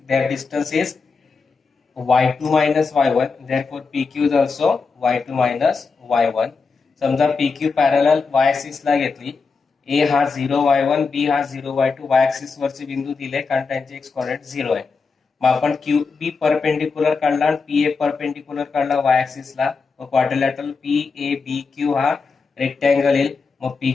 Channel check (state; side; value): quieter; right; 4.7 dB